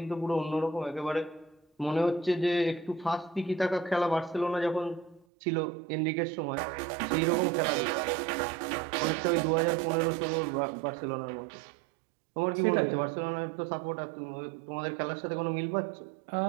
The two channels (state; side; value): drops out; left; at 5.2 s